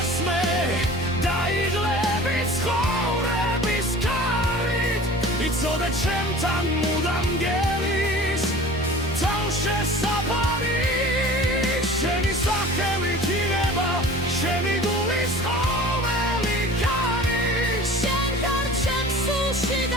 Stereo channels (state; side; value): normal; both; correlation 0.42